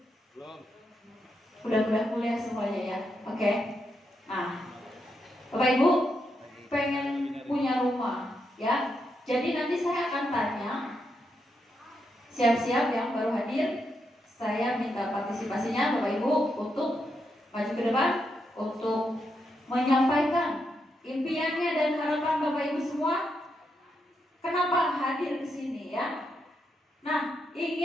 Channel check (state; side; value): normal; both; correlation 0.82